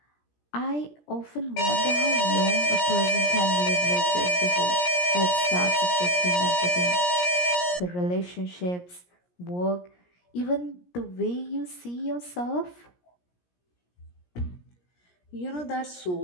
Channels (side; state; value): right; late; 17 ms